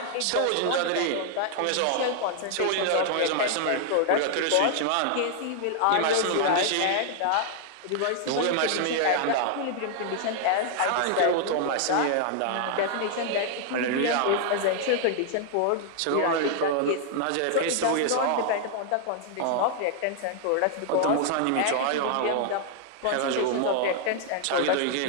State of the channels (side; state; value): both; different; correlation 0.00